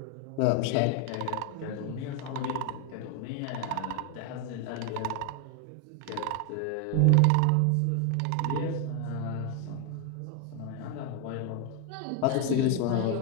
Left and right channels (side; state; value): both; different; correlation 0.01